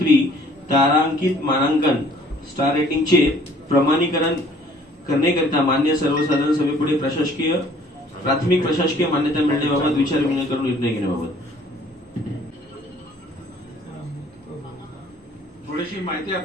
तारांकित मानांकन स्टार रेटिंगचे प्रमाणीकरण करण्याकरिता मान्य सर्वसाधारण सभेपुढे प्राथमिक प्रशासकीय मान्यता मिळण्याबाबत विचारविनिमय करून निर्णय घेण्याबाबत थोडीशी माहिती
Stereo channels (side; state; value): both; normal; correlation 0.57